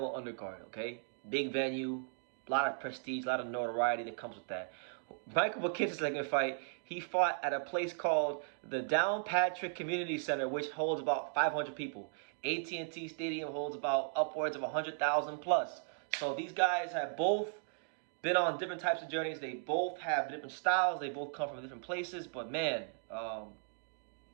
okay? Big venue, a lot of prestige, a lot of notoriety that comes with that. Michael Mckinson's second fight, he fought at a place called the Downpatrick Community Center, which holds about 500 people. AT&T Stadium holds about upwards of 100,000 plus. So these guys have both been on different types of journeys. They both have different styles. They both come from different places. But man,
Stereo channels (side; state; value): left; silent; digital silence